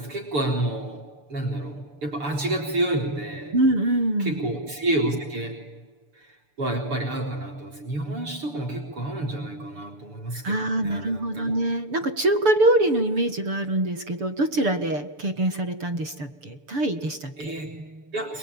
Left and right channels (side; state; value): left; late; 6.9 ms